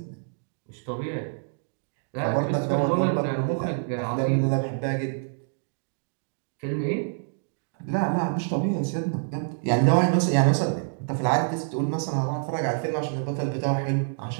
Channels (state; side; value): silent; left; digital silence